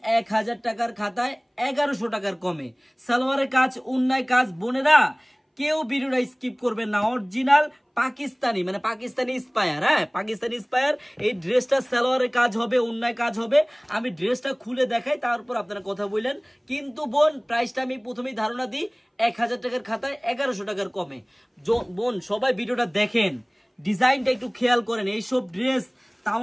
1000 টাকার খাতায় 1100 টাকার কমে। সালোয়ারের কাজ, উন্নায় কাজ, বোনেরা কেউ ভিডিওটা স্কিপ করবেন না। অরিজিনাল পাকিস্তানি, মানে পাকিস্তানি ইন্সপায়ার, হ্যাঁ পাকিস্তানি ইন্সপায়ার। এই ড্রেসটা সালোয়ারের কাজ হবে, উন্নায় কাজ হবে। আমি ড্রেসটা খুলে দেখাই, তারপর আপনারা কথা বললেন। কিন্তু বোন প্রাইসটা আমি প্রথমেই ধারণা দিই 1000 টাকার খাতায় 1100 টাকার কমে। বোন সবাই ভিডিওটা দেখেন, ডিজাইনটা একটু খেয়াল করেন। এইসব ড্রেস,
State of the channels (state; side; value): identical; both; correlation 1.00